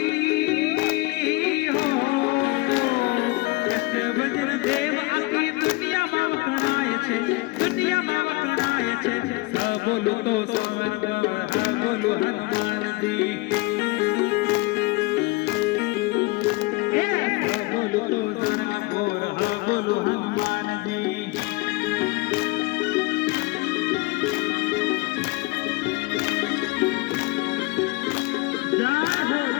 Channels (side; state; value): right; quieter; 22.7 dB